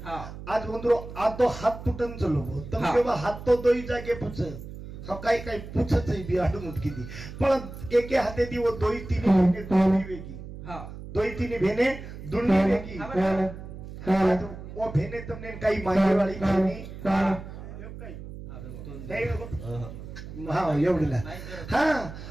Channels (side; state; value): right; noise; hum, 12 dB below the sound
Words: हा आज उंदरो आज तो हात तुटन चलो तम हा. केव्हा हात तो दोई जागे पुछ हा काही पुछच बी आडून उठकी दी पण एके हाते दी वो दोई तीन भेने दुंडी वेगी हा दोई तीन भेने दुंडी वेगी हा बरं आज वो भेने तुमने काही मागे वाली भेनी हा एवढीला हा